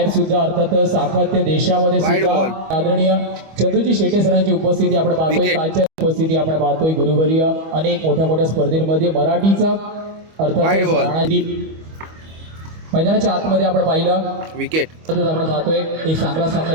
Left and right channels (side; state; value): left; late; 25 ms